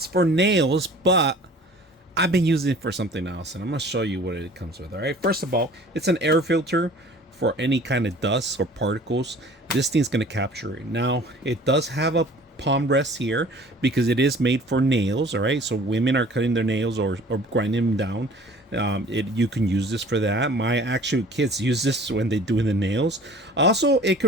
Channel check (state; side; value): normal; both; correlation 0.48